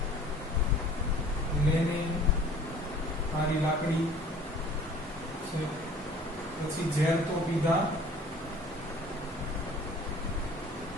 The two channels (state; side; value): normal; both; correlation 0.50